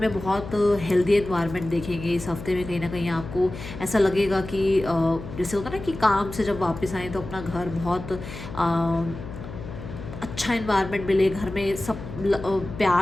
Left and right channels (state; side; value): noise; left; hum, 11 dB below the sound